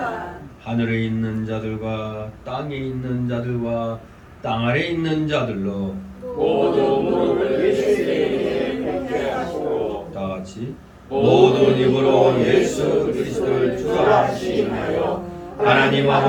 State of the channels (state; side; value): identical; both; correlation 1.00